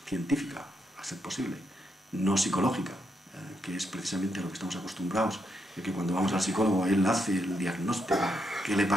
científica, a ser posible, no psicológica, que es precisamente a lo que estamos acostumbrados, de que cuando vamos al psicólogo él hace el diagnóstico que le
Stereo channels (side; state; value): both; normal; correlation 0.80